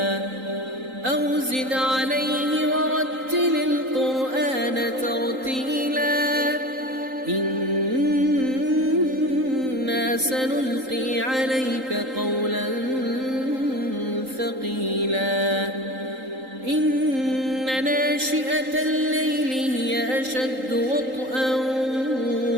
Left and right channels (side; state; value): left; late; 3.8 ms